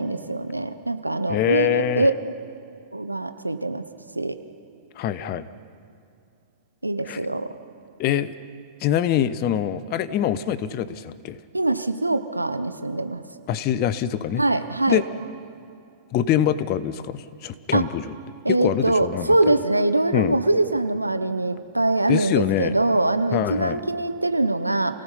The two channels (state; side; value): inverted; both; correlation -0.54